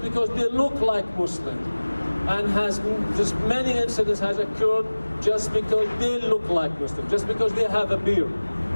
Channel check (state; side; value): inverted; both; correlation -1.00